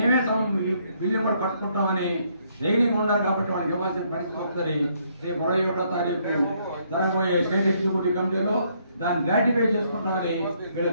బిల్లు కూడా కట్టుకుంటామని ధైర్యంగా ఉన్నారు. కాబట్టి వాళ్ళకి ఇవ్వాల్సిన పరిస్థితి వస్తుంది. రేపు 21వ తారీఖు జరగబోయే స్టేట్ ఎగ్జిక్యూటివ్ కమిటీలో దాన్ని గ్రాటిఫై చేసుకుంటామని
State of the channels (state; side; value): inverted; both; correlation -0.70